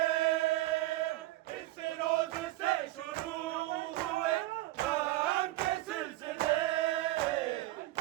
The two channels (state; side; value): quieter; left; 17.2 dB